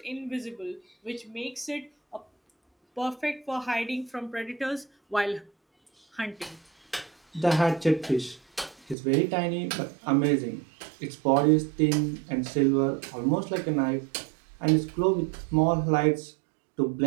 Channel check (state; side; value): drops out; left; at 9.0 s